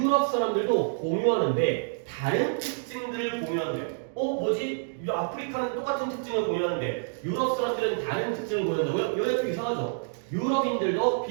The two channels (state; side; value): silent; left; digital silence